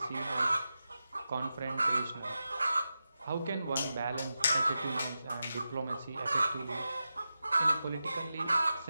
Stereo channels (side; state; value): both; inverted; correlation -0.91